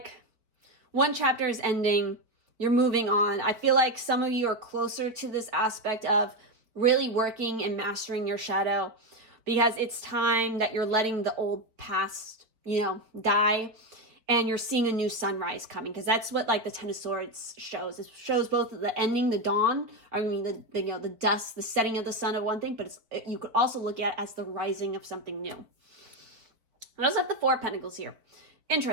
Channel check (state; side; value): late; left; 4.7 ms